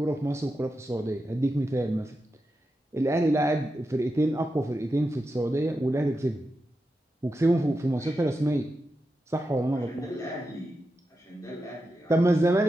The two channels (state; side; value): normal; both; correlation 0.89